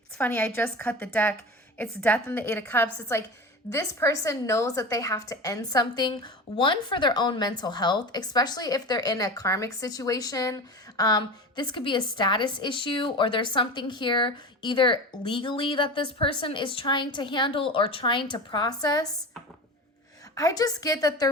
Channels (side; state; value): both; normal; correlation 0.29